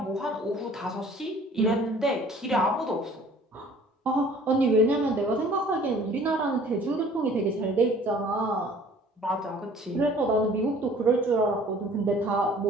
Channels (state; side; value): normal; both; correlation 0.52